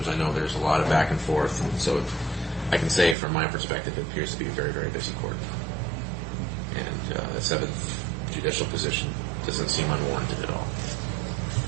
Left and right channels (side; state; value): left; drops out; at 3.2 s